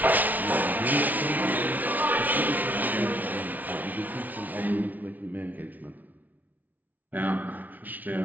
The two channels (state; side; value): late; left; 0.077 ms